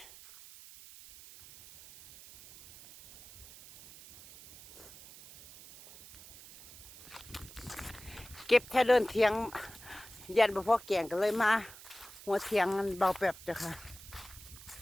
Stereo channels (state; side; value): noise; right; hiss, 18 dB below the sound